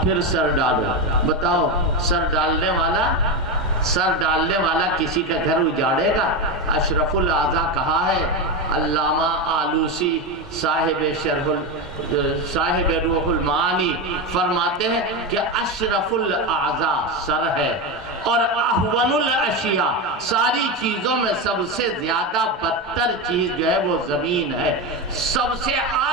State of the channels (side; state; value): both; normal; correlation 0.14